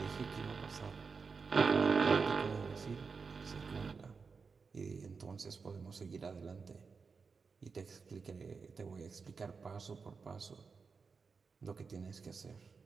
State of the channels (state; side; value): quieter; left; 5.0 dB